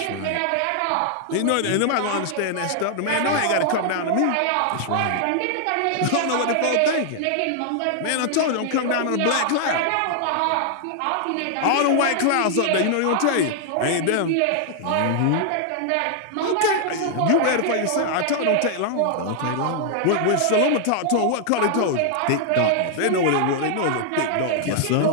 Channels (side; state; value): both; different; correlation 0.00